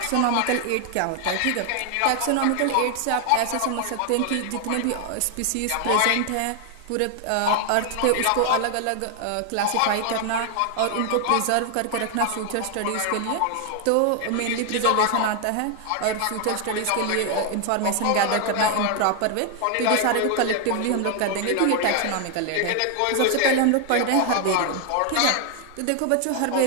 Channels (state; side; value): different; both; correlation 0.00